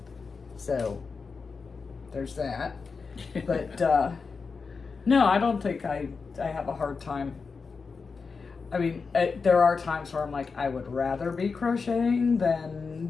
So, there's that. But, no, I don't think I have a hard time. I mean, there are times where I'm like, I would rather be crocheting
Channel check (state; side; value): quieter; right; 4.9 dB